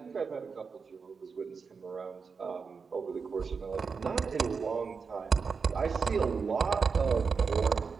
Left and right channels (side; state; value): left; quieter; 5.3 dB